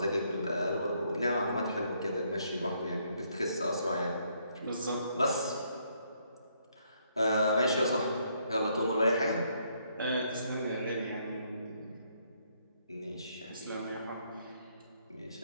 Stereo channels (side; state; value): both; inverted; correlation -0.71